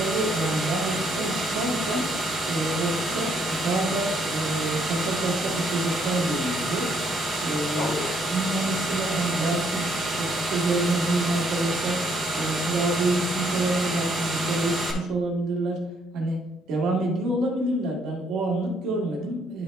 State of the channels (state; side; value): normal; both; correlation 0.70